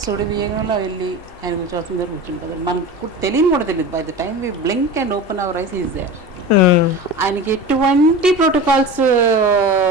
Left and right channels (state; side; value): late; right; 2.7 ms